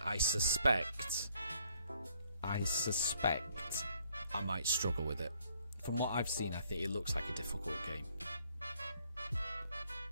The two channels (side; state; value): both; inverted; correlation -0.66